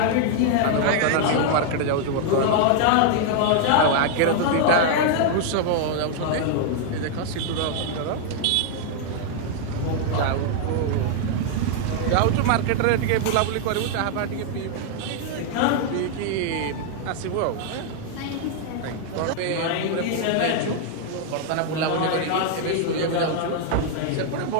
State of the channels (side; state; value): both; different; correlation 0.00